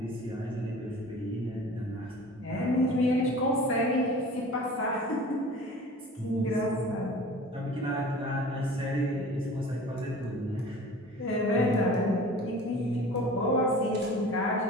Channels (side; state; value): both; normal; correlation 0.41